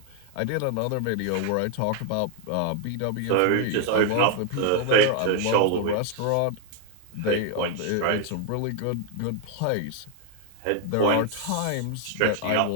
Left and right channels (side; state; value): both; different; correlation 0.00